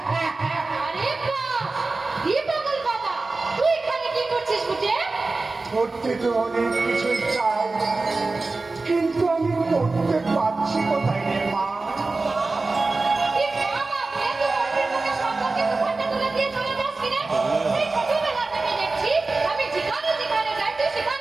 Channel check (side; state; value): left; quieter; 3.5 dB